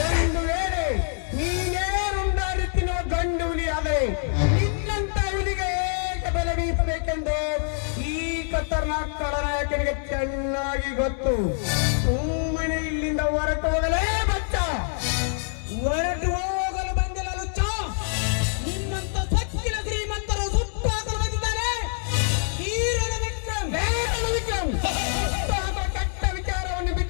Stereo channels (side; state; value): right; silent; digital silence